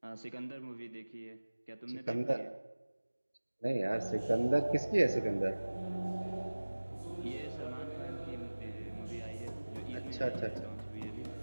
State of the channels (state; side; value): inverted; both; correlation -1.00